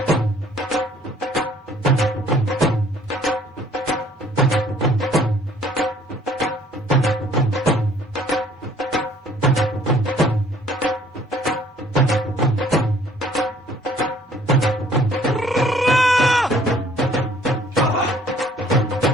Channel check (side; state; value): both; normal; correlation 0.58